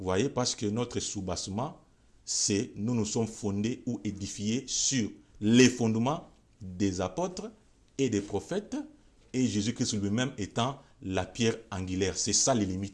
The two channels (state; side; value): identical; both; correlation 1.00